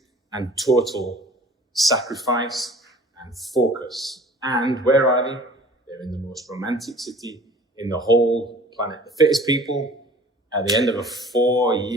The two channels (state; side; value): normal; both; correlation 0.48